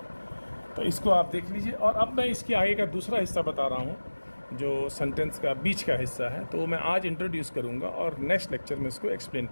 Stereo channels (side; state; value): both; inverted; correlation -1.00